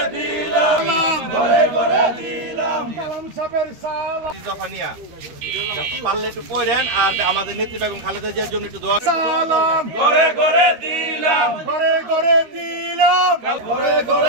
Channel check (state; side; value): late; left; 13 ms